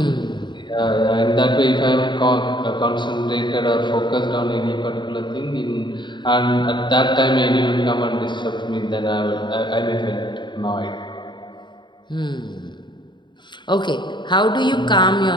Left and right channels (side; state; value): right; late; 0.22 ms